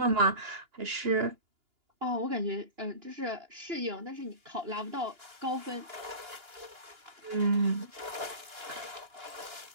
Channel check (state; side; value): late; left; 2.9 ms